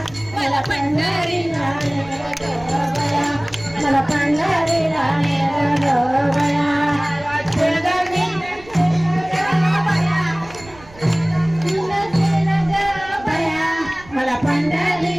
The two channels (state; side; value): noise; right; rumble, 22 dB below the sound